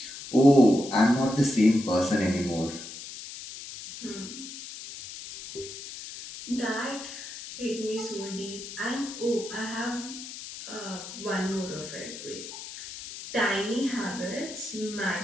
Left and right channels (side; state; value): left; noise; hiss, 11 dB below the sound